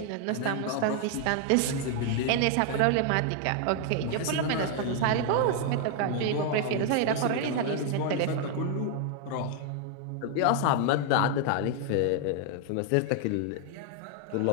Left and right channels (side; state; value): both; different; correlation 0.00